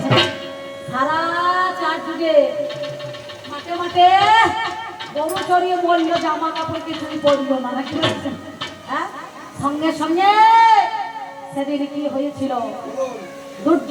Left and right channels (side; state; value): both; identical; correlation 1.00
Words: সারা চার যুগে মাঠে মাঠে গরু চড়িয়ে বললো, জামা কাপড় কিছুই পরলো না। নাকি বলছেন? হ্যাঁ, সঙ্গে সঙ্গে সেদিন কি হয়েছিল?